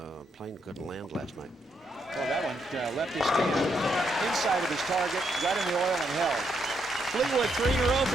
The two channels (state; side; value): normal; both; correlation 0.77